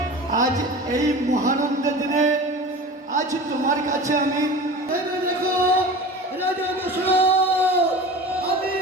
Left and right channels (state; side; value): normal; both; correlation 0.35